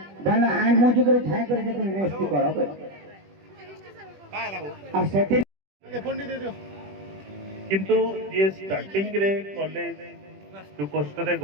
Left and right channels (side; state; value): left; late; 21 ms